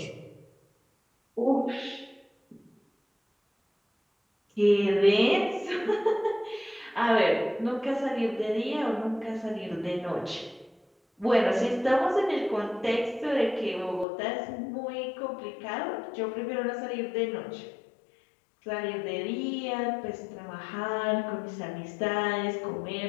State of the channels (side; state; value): right; drops out; at 14.1 s